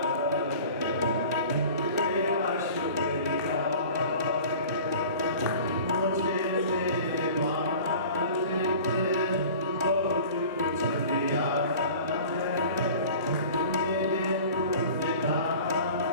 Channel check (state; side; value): inverted; both; correlation -0.42